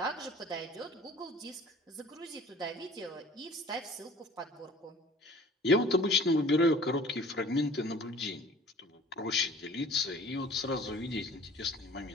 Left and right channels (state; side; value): normal; both; correlation 0.48